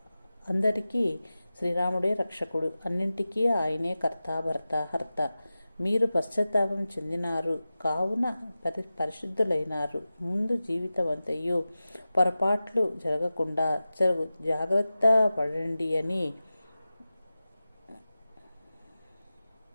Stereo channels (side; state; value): both; inverted; correlation -0.95